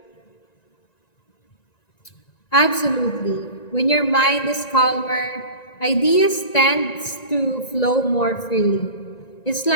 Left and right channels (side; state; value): right; late; 1.9 ms